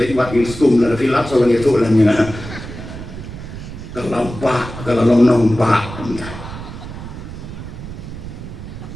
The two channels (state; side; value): noise; right; rumble, 11 dB below the sound